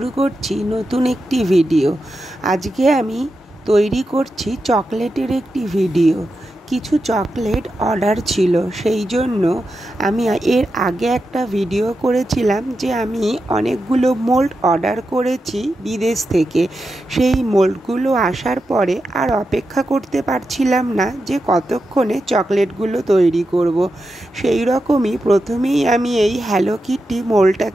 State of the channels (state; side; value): normal; both; correlation 0.89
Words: করছি নতুন একটি ভিডিও। আজকে আমি তৈরি করছি চকলেটের একটি ভিডিও। কিছু চকলেট অর্ডার ছিল, সেই জন্য আমি এর আগে একটা ভিডিও করেছিলাম যে আমি অনেকগুলো মোল্ড অর্ডার করেছি বিদেশ থেকে। সেই মোল্ডগুলো আসার পরে আর অপেক্ষা করতে পারছিলাম না যে কতক্ষণে চকলেটগুলো তৈরি করব। সেই রকমই প্রথমেই আমি এই হ্যালো কিটি